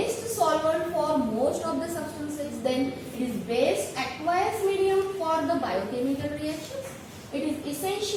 solvent for most of the substances. Then it is best aqueous medium for the biochemical reactions. It is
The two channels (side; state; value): both; identical; correlation 1.00